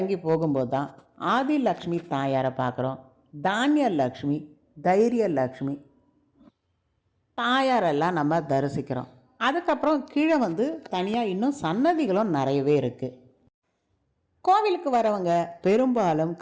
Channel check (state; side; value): identical; both; correlation 1.00